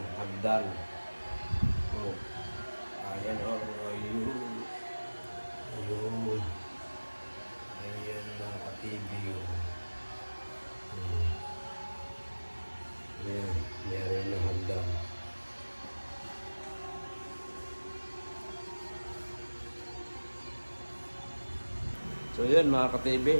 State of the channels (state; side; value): inverted; both; correlation -1.00